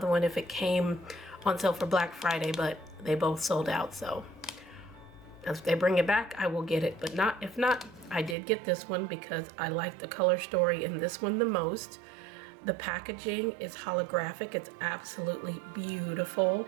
one if it came on sale for Black Friday, but they both sold out. So if they bring it back, I will get it, but if not, I did get this one because I like the color story in this one the most. The packaging is holographic. It's absolutely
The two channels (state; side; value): drops out; left; at 8.3 s